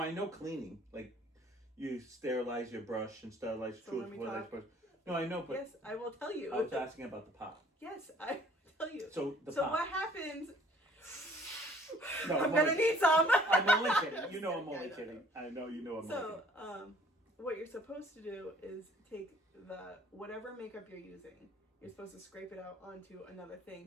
know cleaning. Like you sterilize your brush and sterilize So your let me tooth. talk. Brush. No, I know, but Yes, I will tell you. I was asking about the pot. Yes, I will tell you. So the So pot. what happens? No, I'm I'm gonna only- need some. I'm only kidding. You know I'm Yeah, only I know. kidding. I know you know I'm only So, kidding. what you're supposed to do is take whatever makeup you're using. You're supposed to scrape it out onto another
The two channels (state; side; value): normal; both; correlation 0.57